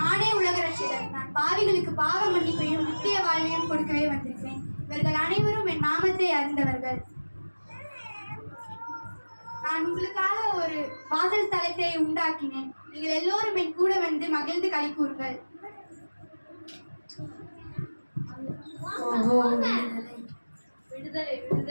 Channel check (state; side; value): inverted; both; correlation -1.00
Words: உலக ரட்சகர். நான் பாவிகளுக்கு பாவ மன்னிப்பையும் நித்திய வாழ்வையும் கொடுக்கவே வந்திருக்கிறேன். இவர்கள் அனைவரும் என் நாமத்தை அறிந்தவர்கள். நான் உங்களுக்காக ஒரு வாசல் தலத்தை உண்டாக்கினேன். நீங்கள் எல்லோரும் என் கூட வந்து மகிழ்ந்து களி கூறுங்கள். விடுதலை